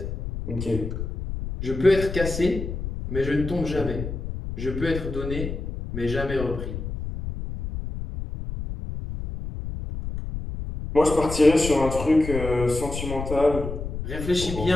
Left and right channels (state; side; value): noise; left; rumble, 6 dB below the sound